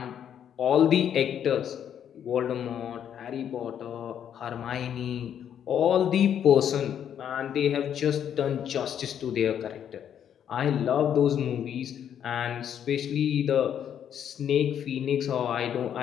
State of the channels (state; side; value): quieter; right; 9.2 dB